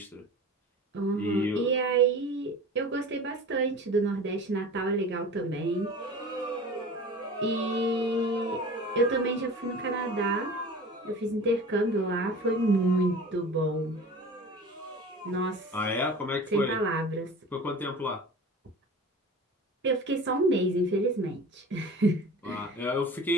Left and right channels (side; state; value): both; normal; correlation 0.38